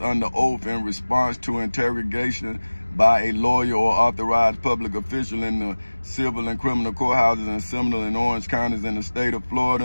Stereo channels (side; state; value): both; inverted; correlation -1.00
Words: oath in response to interrogation by a lawyer or authorized public official in the civil and criminal courthouses in Seminole and Orange counties in the state of